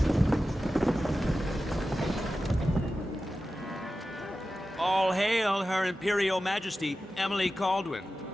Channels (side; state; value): both; normal; correlation 0.93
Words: All hail Her Imperial Majesty, Emily Caldwin.